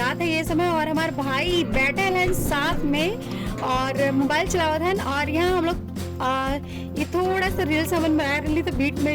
हैं ये समय, और हमारे भाई बैठे हैं साथ में और मोबाइल चलावत हैं। और यहाँ हम लोग ये थोड़ा सा रील्स हमन बना रही तो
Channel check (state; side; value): identical; both; correlation 1.00